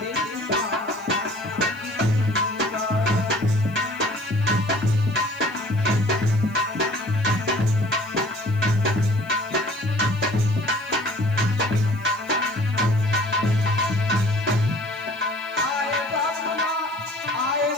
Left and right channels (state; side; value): noise; right; hiss, 26 dB below the sound